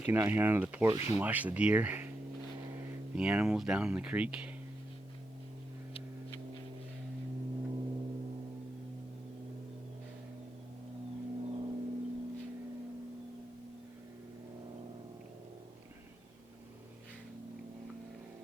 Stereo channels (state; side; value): normal; both; correlation 0.86